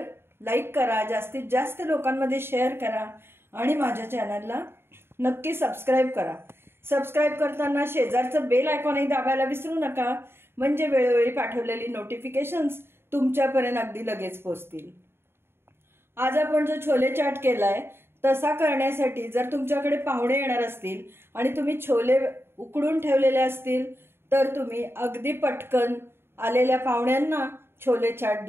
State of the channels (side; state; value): left; late; 0.11 ms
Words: लाईक करा, जास्तीत जास्त लोकांमध्ये शेअर करा आणि माझ्या चॅनलला नक्की सबस्क्राईब करा. सबस्क्राईब करताना शेजारचं बेल आयकॉनही दाबायला विसरू नका, म्हणजे वेळोवेळी पाठवलेली नोटिफिकेशन्स तुमच्यापर्यंत अगदी लगेच पोहोचतील. आज आपण जो छोले चाट केलाय तसा करण्यासाठी जर तुमच्याकडे पाहुणे येणार असतील आणि तुम्ही छोले उकडून ठेवलेले असतील तर तुम्ही अगदी पटकन आलेल्या पाहुण्यांना छोले चाट